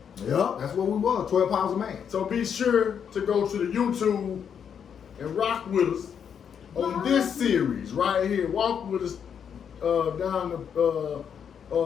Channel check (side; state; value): right; quieter; 7.7 dB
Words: Yep, that's what we was, 12 pounds a man. So be sure to go to the YouTube and rock with us on this series right here. Walk with us down the